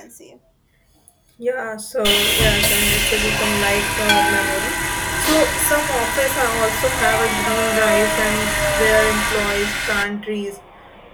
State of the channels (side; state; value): both; identical; correlation 1.00